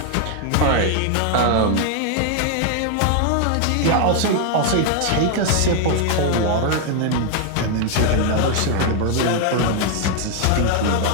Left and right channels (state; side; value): different; both; correlation 0.00